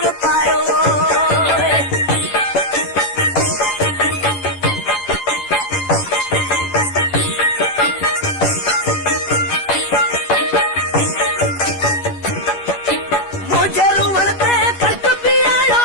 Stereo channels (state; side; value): late; right; 10 ms